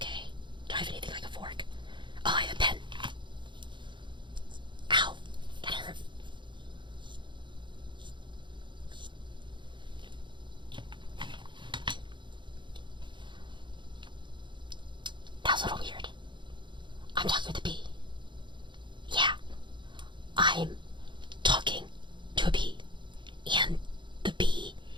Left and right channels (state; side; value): late; left; 0.23 ms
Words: Do I have anything like a fork? Oh, I have a pen. Ow. That hurt. That was a little weird. I'm talking with a bee. Yeah. I'm talking to a bee. And the bee